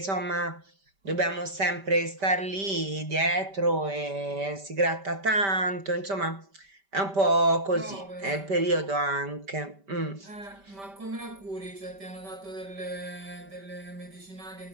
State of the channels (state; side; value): late; left; 5.1 ms